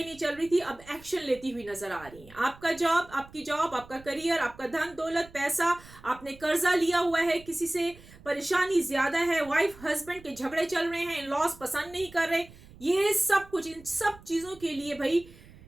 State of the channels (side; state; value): right; noise; rumble, 21 dB below the sound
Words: नहीं चल रही थी अब एक्शन लेती हुई नजर आ रही हैं। आपका जॉब, आपकी जॉब, आपका करियर, आपका धन दौलत, पैसा, आपने कर्जा लिया हुआ है, किसी से परेशानी ज्यादा है, वाइफ हस्बैंड के झगड़े चल रहे हैं, लॉस पसंद नहीं कर रहे, ये सब कुछ, इन सब चीजों के लिए भाई